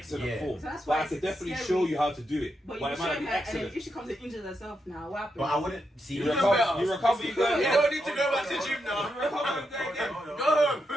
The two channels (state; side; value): normal; both; correlation 0.84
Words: Yeah. form. So that's But why I it's could definitely scary. show you how to do it. But it you might show not her, be and then excellent. if she comes and injures herself now, what happens? But I wouldn't see. You You recover, better. you recover, you go. You don't need to go back to the gym now. You recover and go again.